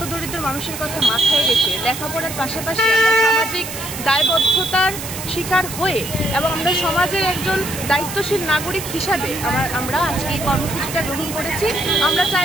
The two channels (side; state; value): right; noise; hiss, 9 dB below the sound